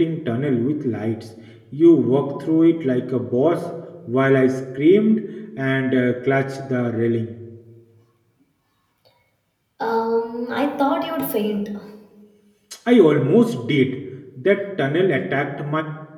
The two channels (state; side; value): identical; both; correlation 1.00